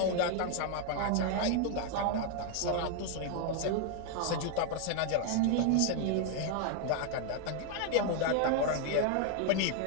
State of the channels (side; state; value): both; different; correlation 0.00